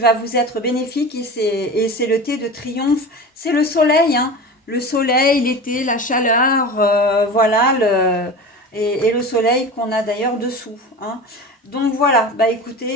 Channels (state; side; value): normal; both; correlation 0.32